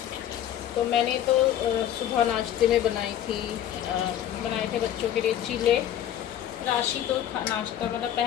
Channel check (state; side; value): quieter; right; 11.0 dB